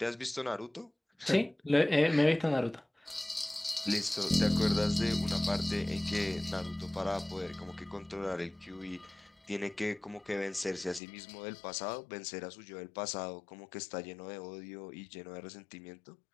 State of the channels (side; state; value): right; drops out; at 11.0 s